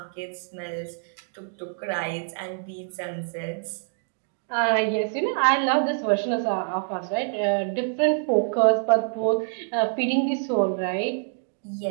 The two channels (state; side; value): silent; left; digital silence